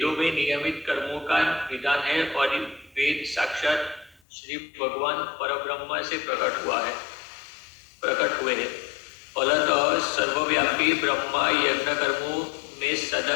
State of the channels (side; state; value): right; drops out; at 4.2 s